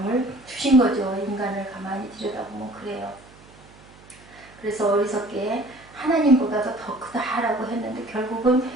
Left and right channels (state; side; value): noise; right; hum, 24 dB below the sound